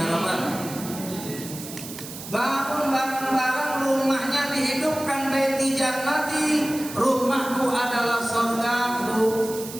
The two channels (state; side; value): noise; right; hiss, 12 dB below the sound